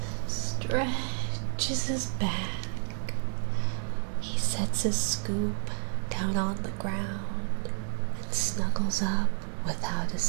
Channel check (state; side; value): silent; left; 58 dB below the other